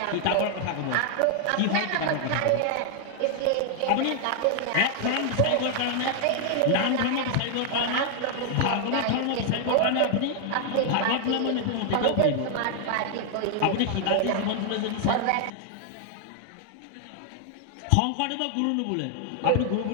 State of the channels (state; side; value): different; both; correlation 0.00